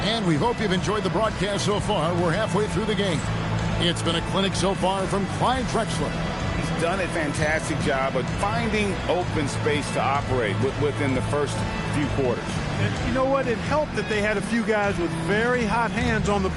And we hope you've enjoyed the broadcast so far. We're halfway through the game. It's been a clinic so far from Clyde Drexler. He's done a fantastic job of finding open space to operate within the first few quarters. And you know what? It helped that they had a few guys with very hot hands on the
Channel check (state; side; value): identical; both; correlation 1.00